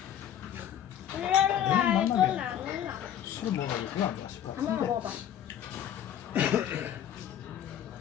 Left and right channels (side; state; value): right; quieter; 10.1 dB